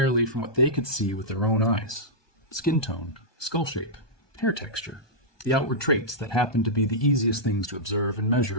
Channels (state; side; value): late; right; 1.2 ms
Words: from what they could see with their own eyes. Skin tone, skull shape, hair texture, the outward traits that happened to be the easiest things to observe and